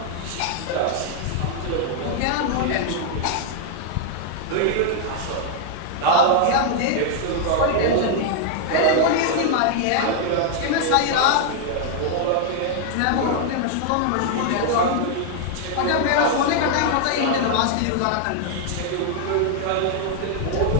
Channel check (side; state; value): both; different; correlation 0.00